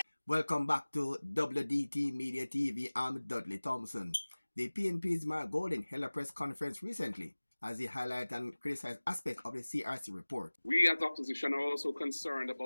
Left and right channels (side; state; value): both; inverted; correlation -1.00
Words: Welcome back to WDT Media TV. I'm Dudley Thompson. The PNP's Mark Golding held a press conference recently as he highlighted and criticized aspects of the CRC report. We as opposition are also concerned